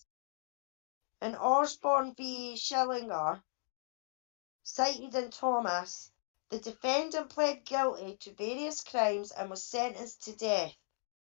In Osborne v. Schillinger, cited in Thomas, the defendant pled guilty to various crimes and was sentenced to death.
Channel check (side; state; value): right; silent; digital silence